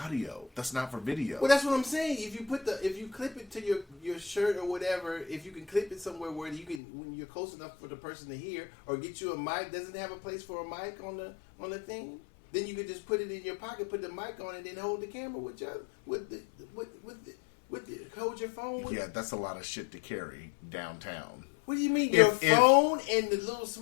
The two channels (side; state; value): right; drops out; at 6.8 s